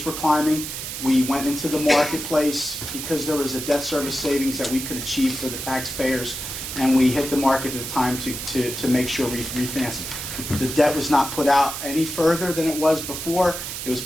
were climbing. We went into the marketplace because there was a debt service savings that we could achieve for the taxpayers, and we hit the market at the time to make sure we refinance it. The debt was not put out any further than it was before. It was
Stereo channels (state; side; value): noise; right; hiss, 6 dB below the sound